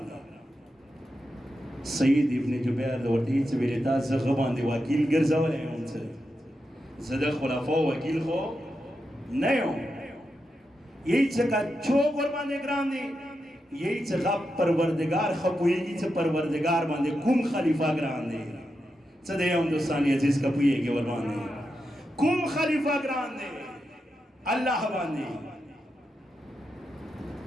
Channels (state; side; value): normal; both; correlation 0.87